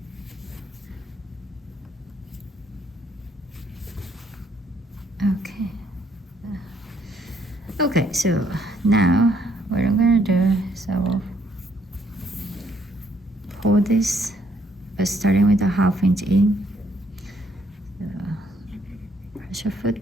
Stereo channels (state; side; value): normal; both; correlation 0.69